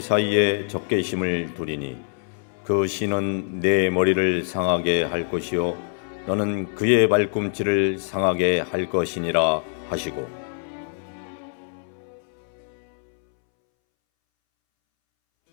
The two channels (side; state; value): right; silent; 62 dB below the other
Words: 사이에 적개심을 두리니 그 씨는 내 머리를 상하게 할 것이요 너는 그의 발꿈치를 상하게 할 것이니라 하시고